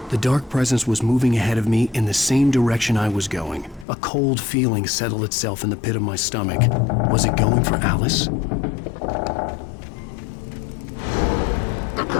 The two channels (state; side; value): drops out; right; at 3.9 s